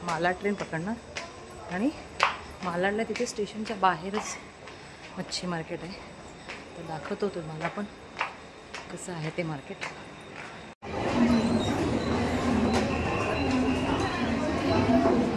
मालाड ट्रेन पकडणार आणि मालाडला तिथे स्टेशनच्या बाहेरच मच्छी मार्केट आहे. तर दाखवतो तुम्हाला पण कसं आहे ते मार्केट.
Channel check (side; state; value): both; identical; correlation 1.00